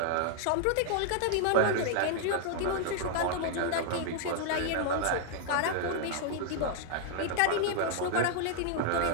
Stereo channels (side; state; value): both; different; correlation 0.00